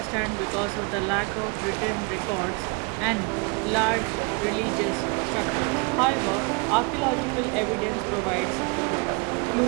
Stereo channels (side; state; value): left; quieter; 32.2 dB